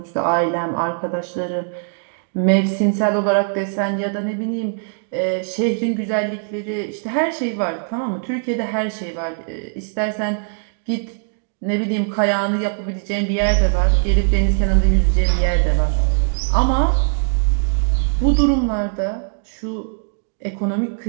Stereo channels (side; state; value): left; silent; digital silence